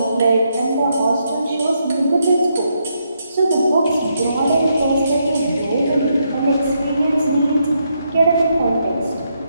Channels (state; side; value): inverted; both; correlation -0.79